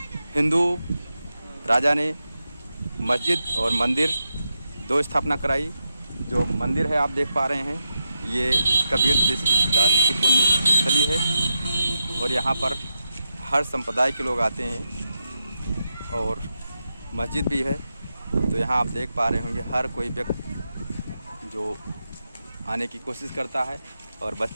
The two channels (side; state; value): both; inverted; correlation -0.87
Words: हिंदू राजा ने मस्जिद और मंदिर दो स्थापना कराई। जो मंदिर है आप देख पा रहे हैं, ये कबीर दास जी की पुण्य स्थली है और यहाँ पर हर संप्रदाय के लोग आते हैं और मस्जिद भी है। तो यहाँ आप देख पा रहे होंगे हर कोई व्यक्ति जो आने की कोशिश करता है और